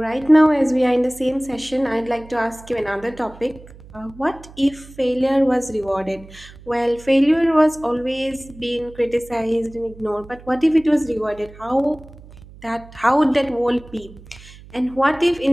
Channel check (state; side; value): noise; right; hum, 20 dB below the sound